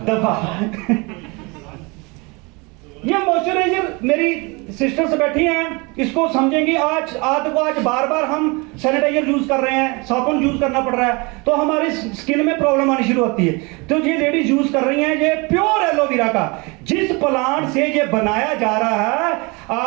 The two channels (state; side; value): quieter; left; 27.9 dB